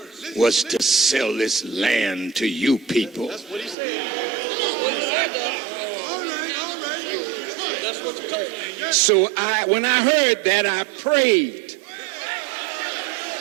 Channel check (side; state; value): left; drops out; at 3.8 s